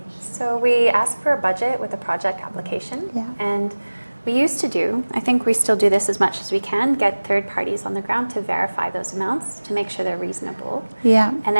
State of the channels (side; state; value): both; inverted; correlation -1.00